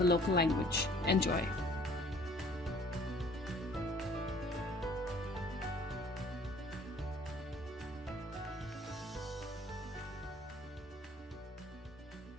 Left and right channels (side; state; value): both; normal; correlation 0.54